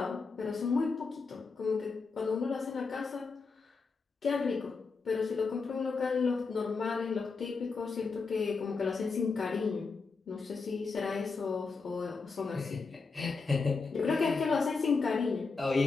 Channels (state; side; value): quieter; right; 4.6 dB